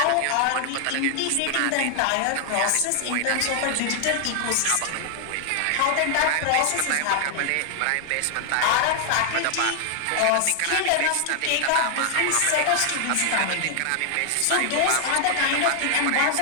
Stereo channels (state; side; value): different; both; correlation 0.00